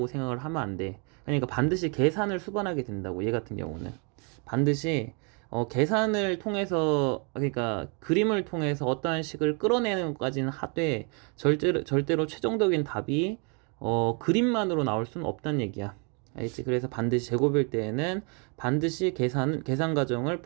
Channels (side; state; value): left; quieter; 35.7 dB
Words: 생각을 하면 안 돼. 그러니까 반드시 계산을 수반하게 된다고. 얘 같은 경우는 반드시 계산을 통해서, 그러니까 그림을 통해서 어떠한 식을 끌어내는 것까지는 하되 절대로 최종적인 답이 그림만으로 나올 수는 없다는 얘기야. 알겠지? 그래서 반드시 제곱일 때에는 반드시 계산 과정을